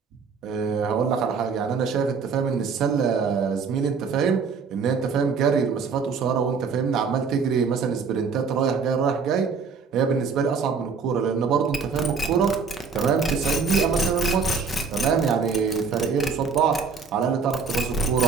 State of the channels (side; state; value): left; quieter; 5.4 dB